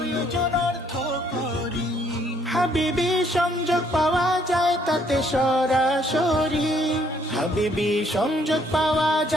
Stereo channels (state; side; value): normal; both; correlation 0.66